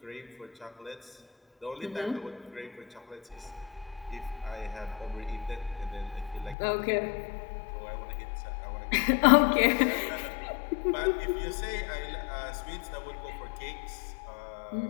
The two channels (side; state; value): right; drops out; at 6.6 s